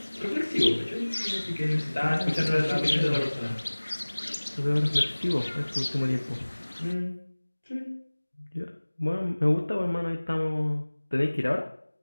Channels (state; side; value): inverted; both; correlation -1.00